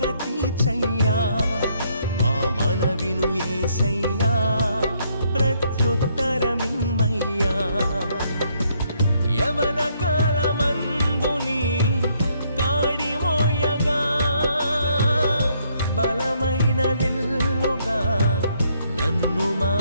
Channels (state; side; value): inverted; both; correlation -0.71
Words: తీర్చయ్యా మా మనవిను యేసయ్యా ప్రత్యుత్తరమిమ్మయ్యా యవన కాలమందుని కాడి మోయగా బలమైన విల్లుగా నన్ను